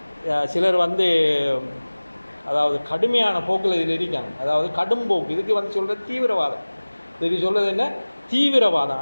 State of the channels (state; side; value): inverted; both; correlation -1.00